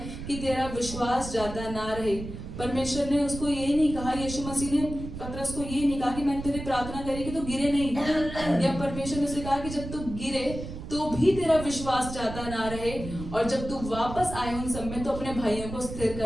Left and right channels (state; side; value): noise; right; rumble, 9 dB below the sound